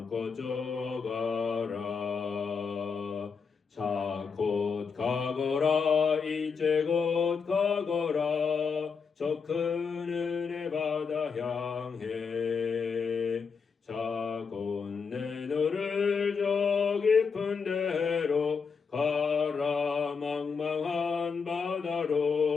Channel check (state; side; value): quieter; right; 5.6 dB